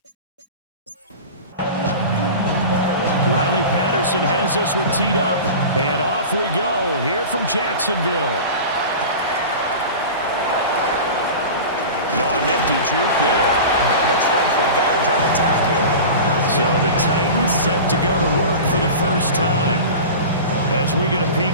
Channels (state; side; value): inverted; both; correlation -0.32